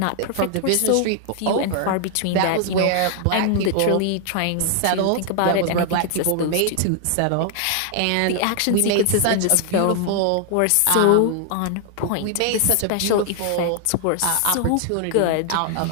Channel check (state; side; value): different; both; correlation 0.00